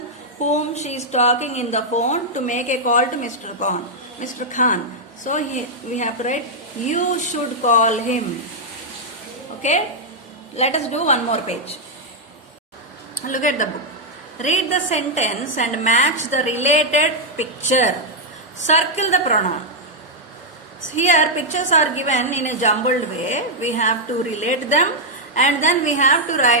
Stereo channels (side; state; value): both; normal; correlation -0.03